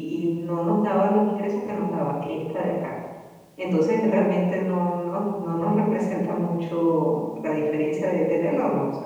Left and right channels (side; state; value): both; identical; correlation 1.00